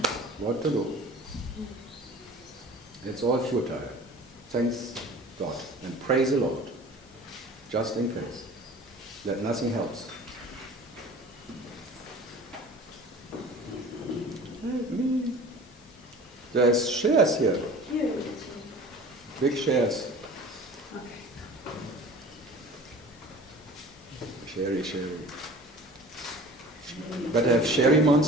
What to do? It's all futile. Thanks God and praise the Lord, just in case, that nothing helps. There's shares here. Big shares. Sherry. Better have sherry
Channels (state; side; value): normal; both; correlation 0.42